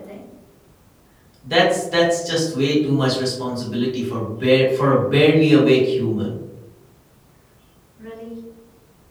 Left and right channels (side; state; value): both; identical; correlation 1.00